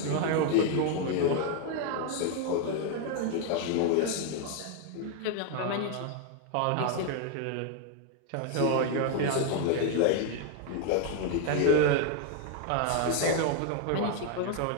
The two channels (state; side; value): different; both; correlation 0.00